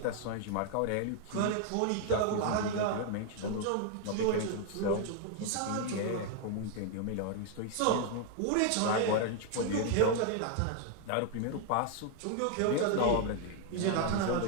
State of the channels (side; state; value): both; different; correlation 0.00